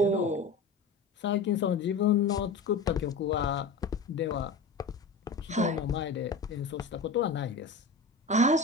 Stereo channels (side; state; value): right; quieter; 3.9 dB